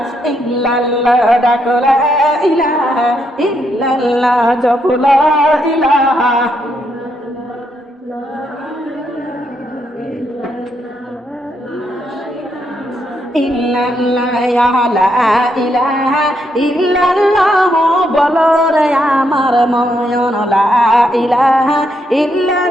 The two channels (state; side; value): normal; both; correlation 0.78